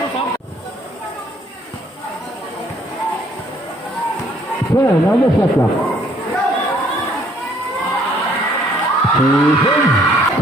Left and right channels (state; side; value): normal; both; correlation 0.63